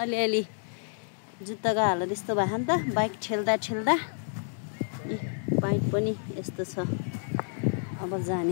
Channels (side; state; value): right; silent; digital silence